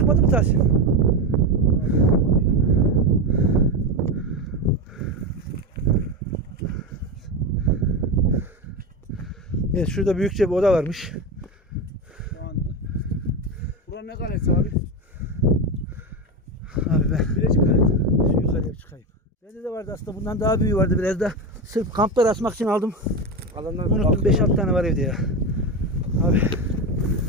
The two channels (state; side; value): normal; both; correlation 0.16